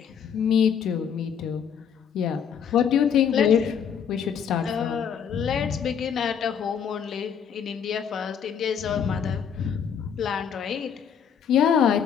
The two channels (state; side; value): quieter; right; 7.7 dB